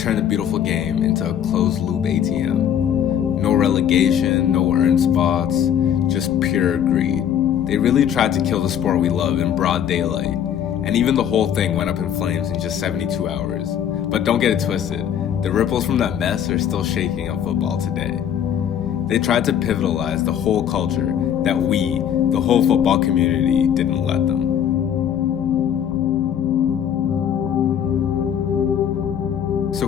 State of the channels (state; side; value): quieter; right; 9.3 dB